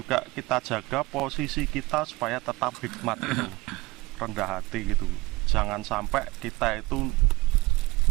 kita jaga posisi kita supaya tetap hikmat gitu, rendah hati gitu. Jangan sampai kita itu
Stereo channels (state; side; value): quieter; left; 21.9 dB